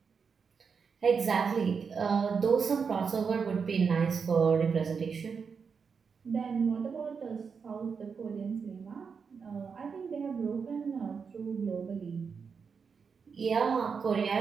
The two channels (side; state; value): left; quieter; 5.8 dB